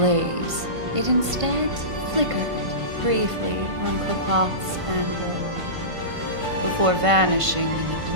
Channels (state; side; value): late; left; 1.5 ms